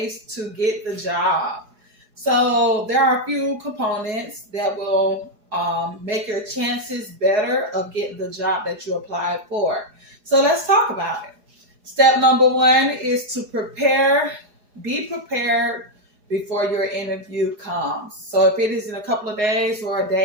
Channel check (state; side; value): late; left; 4.8 ms